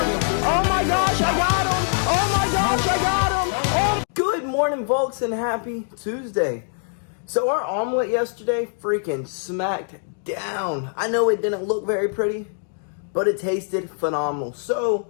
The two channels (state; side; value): silent; right; digital silence